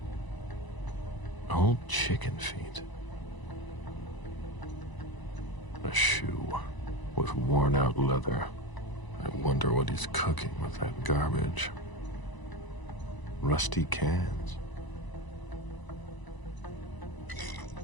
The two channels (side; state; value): right; late; 1.0 ms